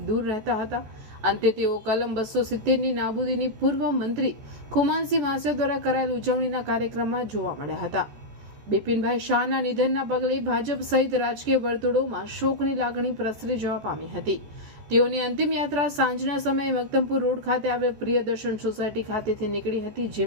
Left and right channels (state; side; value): late; left; 14 ms